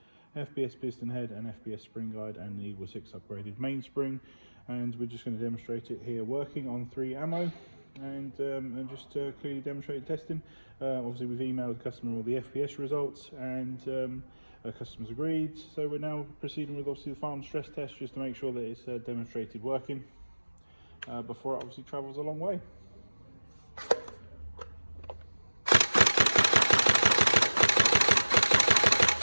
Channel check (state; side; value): inverted; both; correlation -1.00